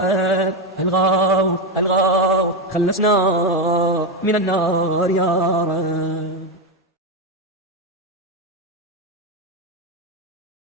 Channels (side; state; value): both; normal; correlation 0.10